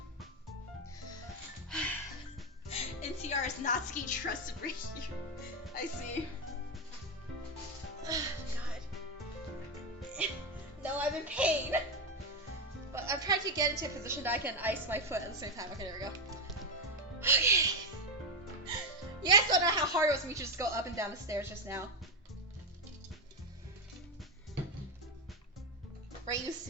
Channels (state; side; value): normal; both; correlation 0.07